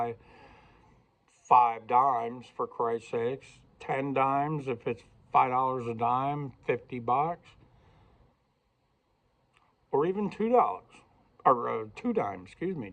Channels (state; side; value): identical; both; correlation 1.00